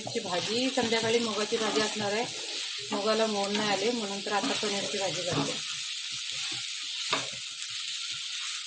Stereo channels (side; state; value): both; identical; correlation 1.00